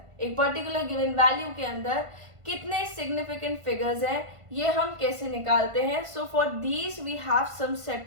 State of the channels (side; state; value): left; late; 1.5 ms